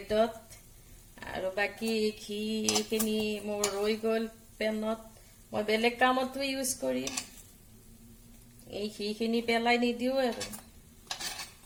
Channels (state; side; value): identical; both; correlation 1.00